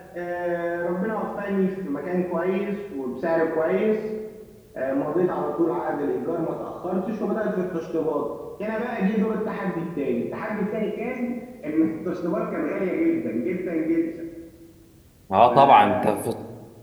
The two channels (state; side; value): identical; both; correlation 1.00